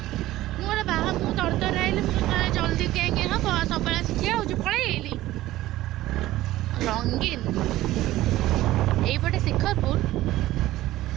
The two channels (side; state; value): left; quieter; 15.8 dB